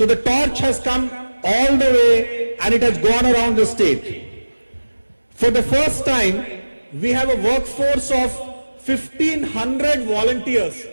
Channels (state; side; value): inverted; both; correlation -1.00